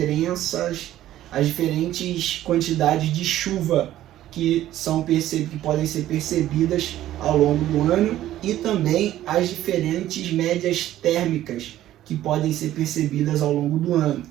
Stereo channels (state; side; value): quieter; left; 13.4 dB